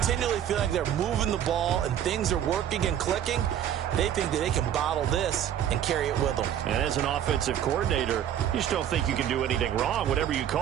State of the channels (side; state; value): left; quieter; 10.3 dB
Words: feel like they're moving the ball and things are working and clicking. They think that they can bottle this and carry it with them. And as an offensive coordinator, you just don't think you can do anything wrong. Whatever you